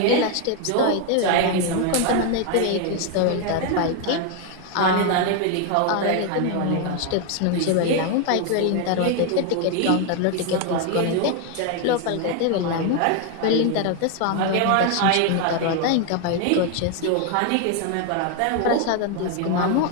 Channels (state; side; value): different; both; correlation 0.01